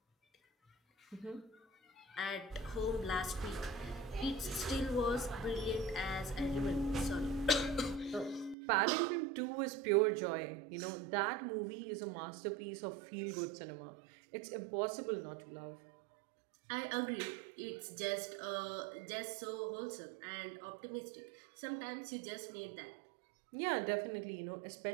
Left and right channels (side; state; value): left; drops out; at 8.6 s